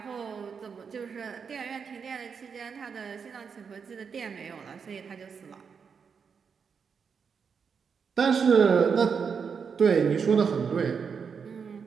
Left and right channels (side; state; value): left; quieter; 6.2 dB